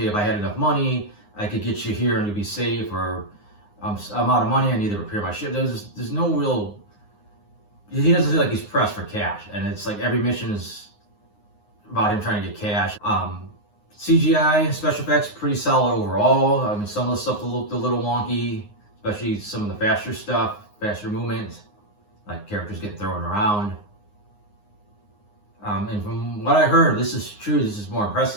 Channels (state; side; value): late; right; 9.6 ms